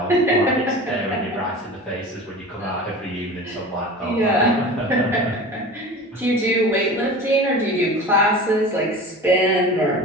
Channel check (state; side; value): normal; both; correlation 0.35